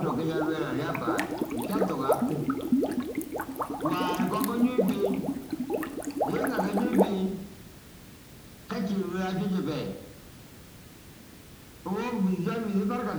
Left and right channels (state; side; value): identical; both; correlation 1.00